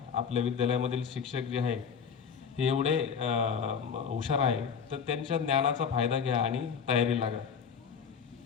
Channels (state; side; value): quieter; right; 6.6 dB